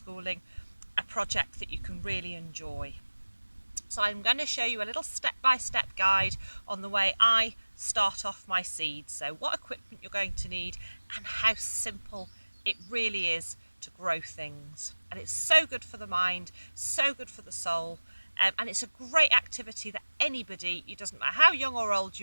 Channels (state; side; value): inverted; both; correlation -1.00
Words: a project that you can really enjoy. So I'm going to show you a little step-by-step guide on the way I start off my seeds. So what equipment you're going to need and how simple it really is to grow things. And it's so good for the mind, so good for the soul, and it's a great activity that anybody, it doesn't matter how young or old